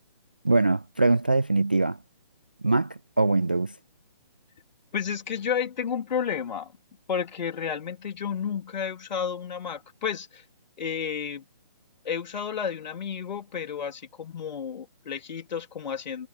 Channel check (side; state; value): both; inverted; correlation -0.62